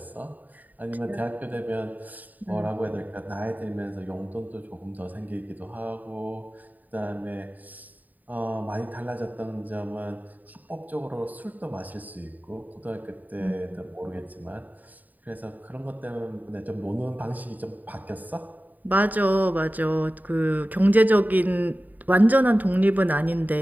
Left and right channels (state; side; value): late; left; 0.083 ms